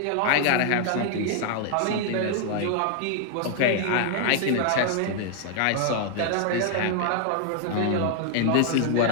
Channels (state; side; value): different; both; correlation 0.00